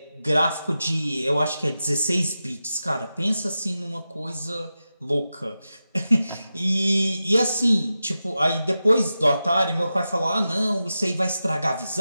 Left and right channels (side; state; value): both; inverted; correlation -0.92